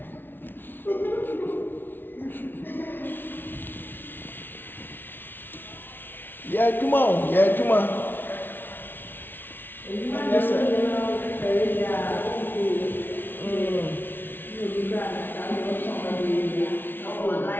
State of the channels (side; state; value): right; late; 0.098 ms